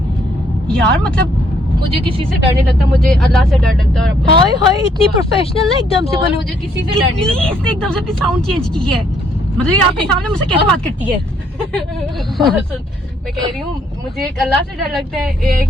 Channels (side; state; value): both; normal; correlation 0.68